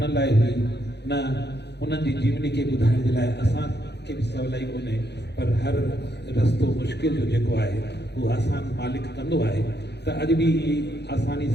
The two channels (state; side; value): late; right; 0.49 ms